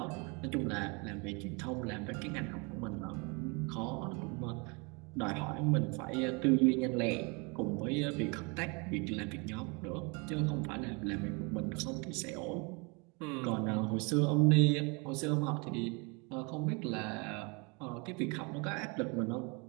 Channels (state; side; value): quieter; left; 30.7 dB